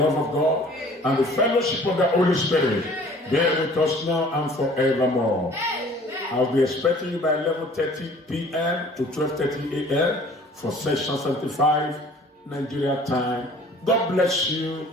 love of God, and the fellowship of the Holy Spirit be with us now and forevermore. Amen. I'll be expecting you by 11:30 p.m. to 12:30 a.m. for session 75 Nigeria time. God bless you.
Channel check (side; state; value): both; normal; correlation 0.51